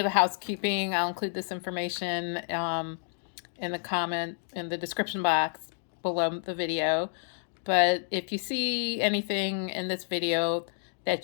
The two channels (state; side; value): silent; right; digital silence